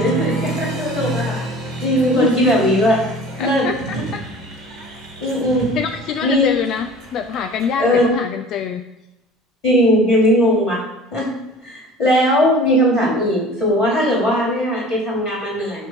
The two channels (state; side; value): normal; both; correlation 0.44